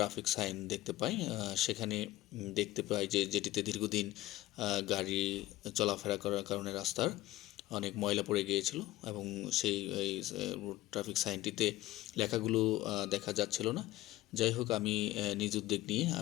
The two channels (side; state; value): right; quieter; 16.3 dB